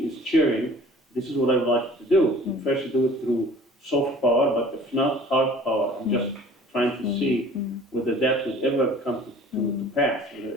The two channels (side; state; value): both; normal; correlation 0.48